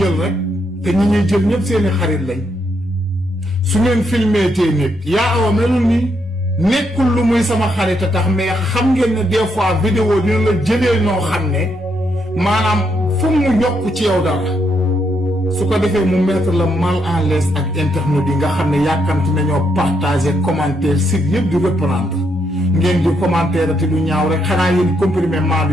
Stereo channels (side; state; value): both; normal; correlation 0.77